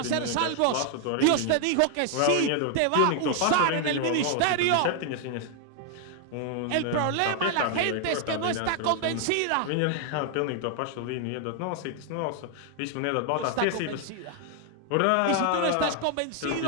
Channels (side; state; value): both; different; correlation 0.00